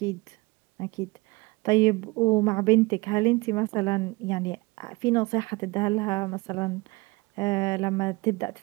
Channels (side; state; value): left; quieter; 24.0 dB